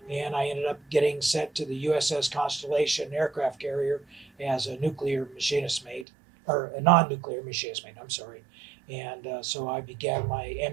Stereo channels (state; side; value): drops out; left; at 6.1 s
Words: and I ended up getting sent to the USS Constellation aircraft carrier as a nuclear machinist mate, or a non-nuclear machinist mate. I'm sorry, and so I began my